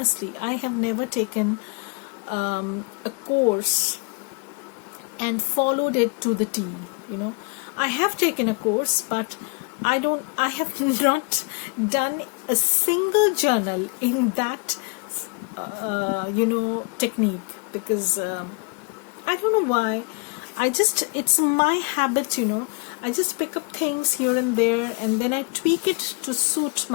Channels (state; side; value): quieter; right; 33.5 dB